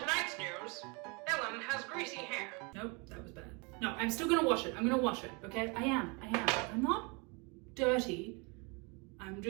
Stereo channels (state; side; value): quieter; left; 30.9 dB